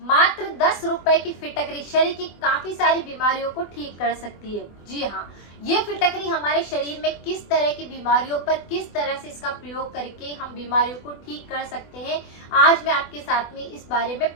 10 रुपए की फिटकरी शरीर की काफी सारी बीमारियों को ठीक कर सकती है। जी हाँ, ये फिटकरी हमारे शरीर में किस तरह की बीमारियों पर किस तरह से इसका प्रयोग करके हम बीमारियों को ठीक कर सकते हैं, आज मैं आपके साथ में इस बारे में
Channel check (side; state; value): right; late; 24 ms